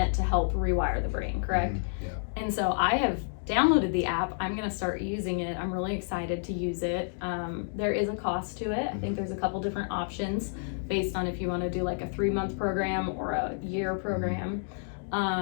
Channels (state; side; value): silent; right; digital silence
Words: to help rewire the brain, correct? Yeah. And so I have downloaded the app. I'm going to start using it. I'm really excited to use it. There is a cost to it. I think there's a couple different options based on if you want to do like a 3-month program or a year program.